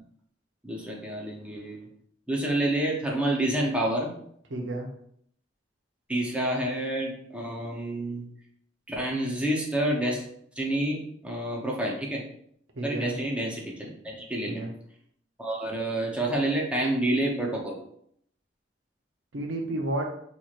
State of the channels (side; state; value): both; normal; correlation 0.51